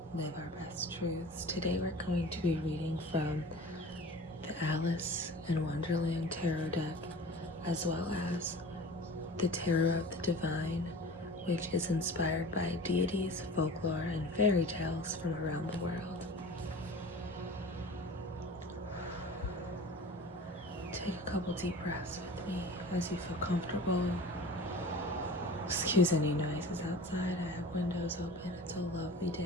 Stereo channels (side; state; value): both; normal; correlation 0.39